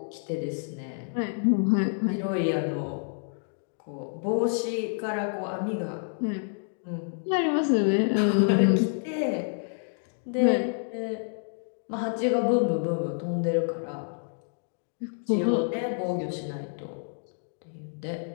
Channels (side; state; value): right; silent; digital silence